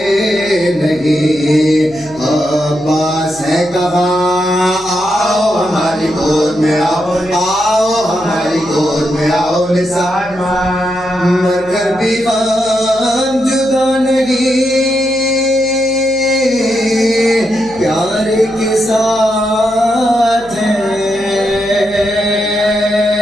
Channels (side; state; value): left; noise; hum, 23 dB below the sound